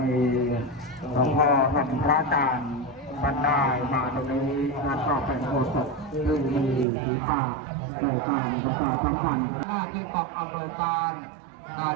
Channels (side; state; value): left; drops out; at 6.9 s